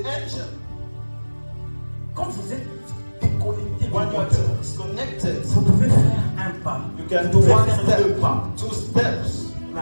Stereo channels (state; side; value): inverted; both; correlation -1.00